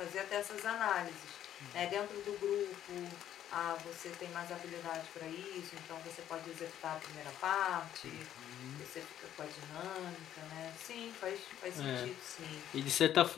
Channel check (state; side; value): quieter; right; 11.1 dB